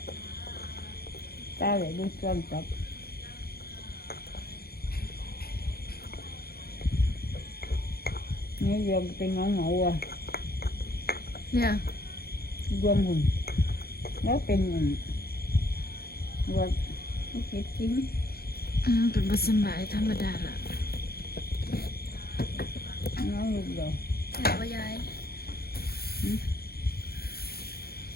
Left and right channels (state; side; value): late; right; 0.45 ms